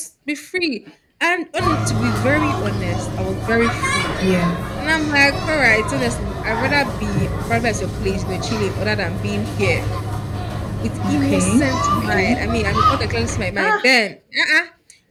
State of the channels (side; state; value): both; identical; correlation 1.00